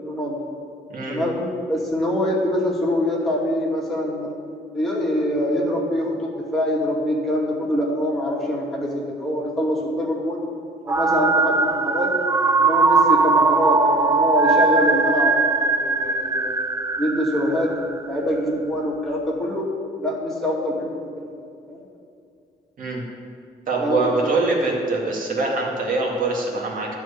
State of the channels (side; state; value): both; normal; correlation 0.47